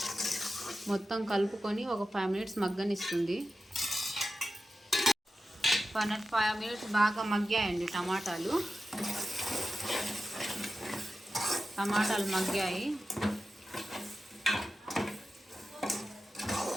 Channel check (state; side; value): normal; both; correlation 0.92